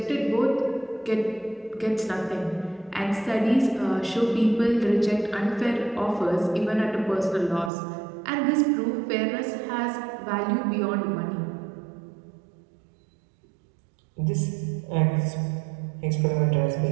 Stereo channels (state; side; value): drops out; left; at 7.7 s